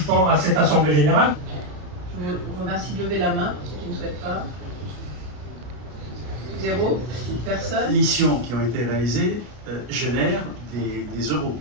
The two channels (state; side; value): late; left; 33 ms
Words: à cette assemblée générale. Je vous remercie de lever la main pour ceux qui ne souhaitent pas. 0, personne. Les missions qui ont été réalisées génèrent des euros,